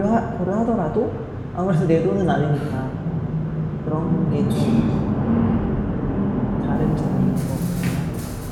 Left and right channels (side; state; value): both; identical; correlation 1.00